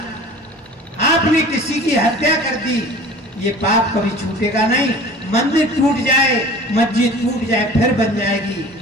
आपने किसी की हत्या कर दी, ये पाप कभी छूटेगा नहीं। मंदिर टूट जाए, मस्जिद टूट जाए, फिर बन जाएगी,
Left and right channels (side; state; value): both; normal; correlation 0.43